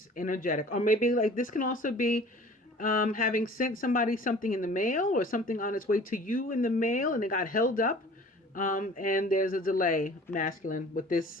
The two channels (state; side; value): normal; both; correlation 0.47